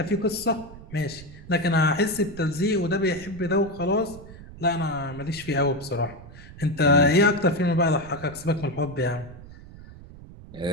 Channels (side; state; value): right; noise; rumble, 17 dB below the sound